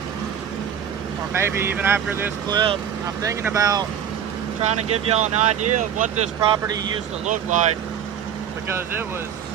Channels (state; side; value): quieter; left; 8.7 dB